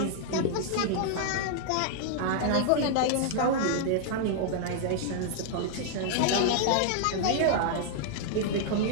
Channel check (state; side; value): different; both; correlation -0.01